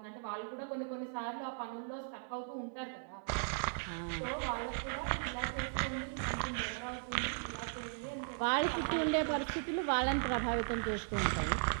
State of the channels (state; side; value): silent; left; 53 dB below the other